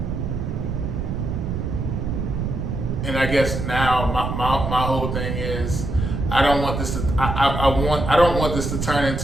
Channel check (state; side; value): noise; right; rumble, 3 dB below the sound